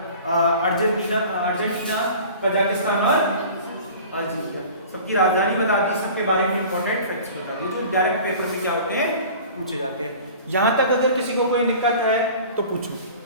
Argentina, Kazakhstan और अल्जीरिया। सबकी राजधानी बता दी, सबके बारे में इंपॉर्टेंट फैक्ट्स बता दी, जो डायरेक्ट पेपर में क्या होते हैं? पूछे जाते हैं। यहां तक अगर किसी को कोई दिक्कत है तो पूछो।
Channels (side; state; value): both; inverted; correlation -0.42